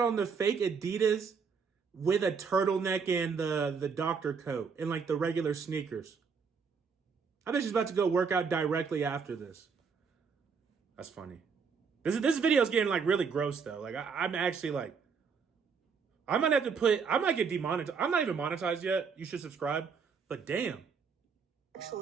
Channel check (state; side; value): quieter; left; 5.7 dB